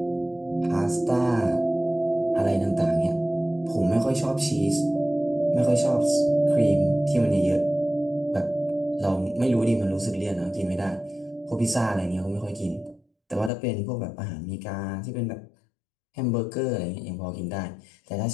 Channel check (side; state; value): right; drops out; at 13.5 s